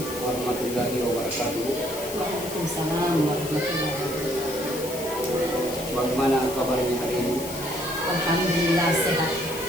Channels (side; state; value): left; noise; hiss, 11 dB below the sound